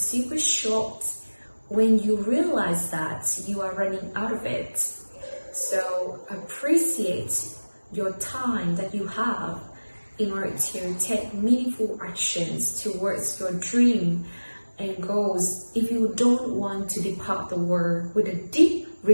short when you realize that you are running out of it. So appreciate your time that you have in order to take meaningful actions towards your dream and goals if you don't want to depart the world with a deep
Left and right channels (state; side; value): inverted; both; correlation -1.00